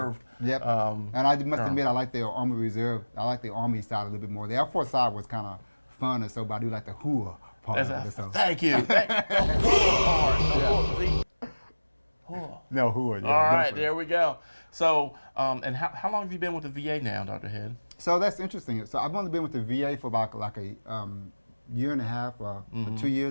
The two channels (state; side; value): inverted; both; correlation -1.00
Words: Yep. And I must admit, I like the Army Reserve. I like the Army side a little bit more. The Air Force side was kind of fun and so, but I do like the hooah part of it. So. Thank you. No hooah. Yeah, all right, there we go. So, and how long have you been with the VA now, Dr. Head? So that's interesting. So I've only been with the VA for about like a year and a half or 2